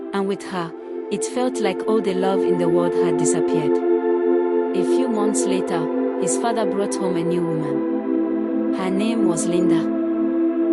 and with her, it felt like all the love in the world had disappeared. A few months later, his father brought home a new woman. Her name was Linda.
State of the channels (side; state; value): both; identical; correlation 1.00